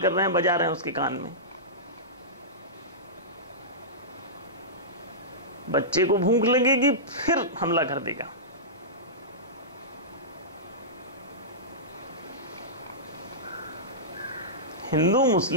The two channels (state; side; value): normal; both; correlation -0.16